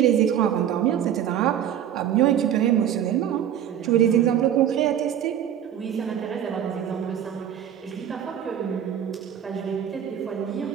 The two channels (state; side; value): quieter; left; 9.9 dB